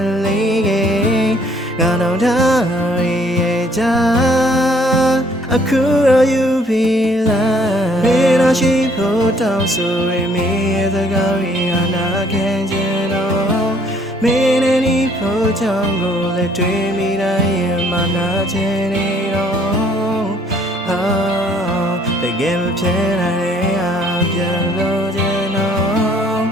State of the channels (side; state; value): both; normal; correlation 0.62